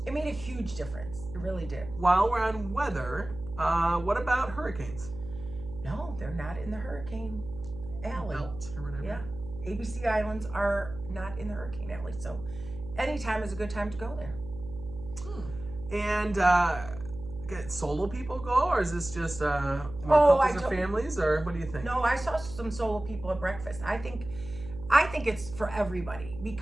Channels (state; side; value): noise; right; hum, 13 dB below the sound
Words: It made a huge difference. It really did. While we're on weather, what about hurricanes? No, they're not in the hurricane alley. Belt or whatever. Yeah. ABC Islands are not in the hurricane alley. So anytime is a good time to go there. And get solo people go, or is this just more couples or families, or what do you think? No, I saw some solo people at breakfast. I think it's for everybody